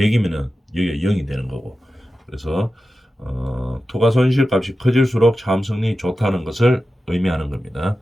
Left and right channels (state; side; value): normal; both; correlation 0.93